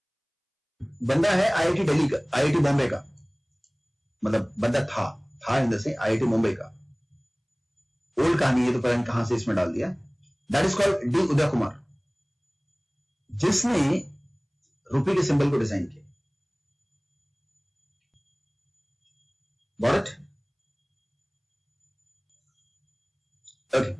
बंदा है आईआईटी दिल्ली का, आईआईटी बॉम्बे का, मतलब बंदा था इन द से आईआईटी मुंबई का. ओल्ड कहानी है तो पता नहीं कहां से इसमें डाल दिया. That is called D Uday Kumar, जिसने रुपये के सिंबल को डिजाइन किया. Got it? Okay,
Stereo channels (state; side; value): identical; both; correlation 1.00